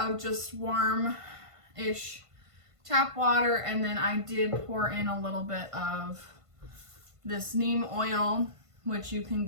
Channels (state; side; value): late; left; 1.5 ms